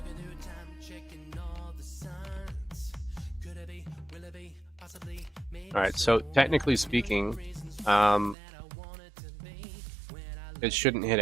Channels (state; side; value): drops out; left; at 8.3 s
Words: All right, so technically speaking, um, it shouldn't hit